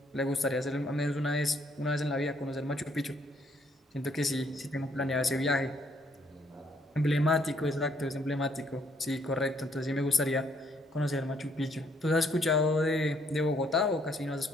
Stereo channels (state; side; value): normal; both; correlation 0.68